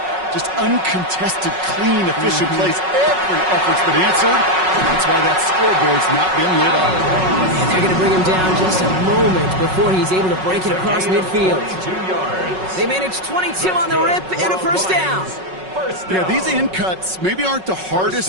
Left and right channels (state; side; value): late; left; 5.4 ms